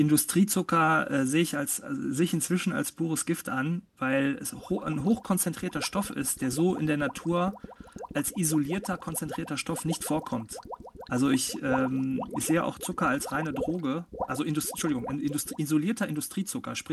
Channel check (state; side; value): identical; both; correlation 1.00